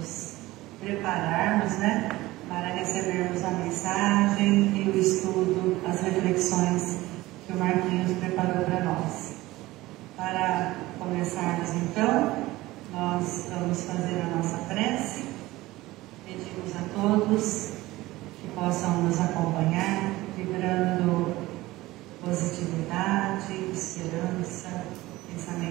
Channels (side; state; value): left; quieter; 18.4 dB